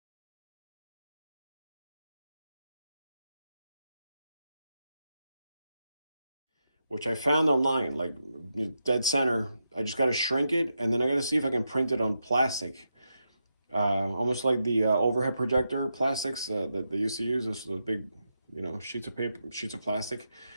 which I found online, like dead center. I just got to shrink it, and then I got to see if I can print it on plastic, almost like the overhead projector plastics that they used to use. Those big, you know, sheets of paper, sheets of plastic,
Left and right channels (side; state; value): both; inverted; correlation -0.85